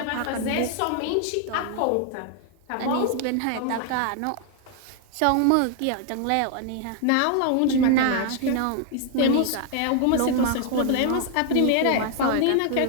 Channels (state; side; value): different; both; correlation 0.00